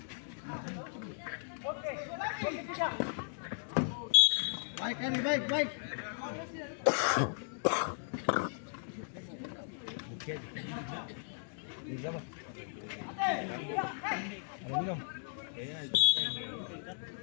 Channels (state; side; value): silent; right; digital silence